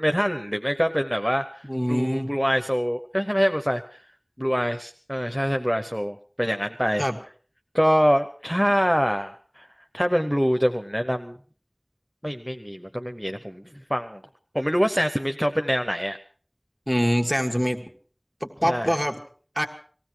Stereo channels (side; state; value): both; identical; correlation 1.00